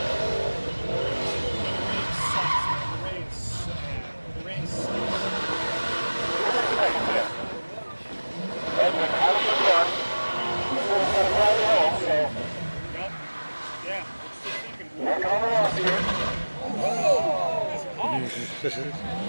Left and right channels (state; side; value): inverted; both; correlation -1.00